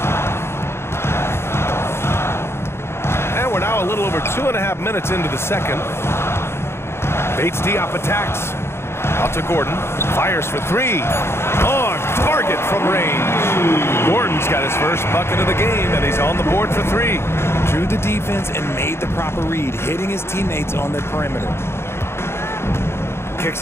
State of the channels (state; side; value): late; right; 0.12 ms